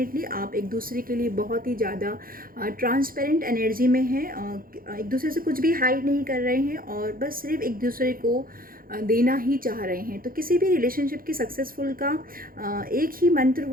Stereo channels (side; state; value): left; late; 0.42 ms